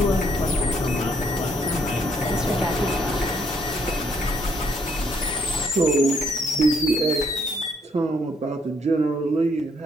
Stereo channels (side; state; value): both; normal; correlation 0.68